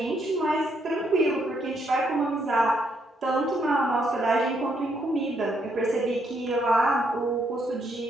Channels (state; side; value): normal; both; correlation 0.74